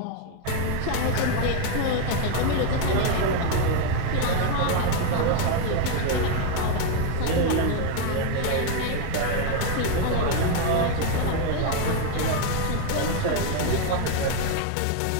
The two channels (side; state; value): both; different; correlation 0.01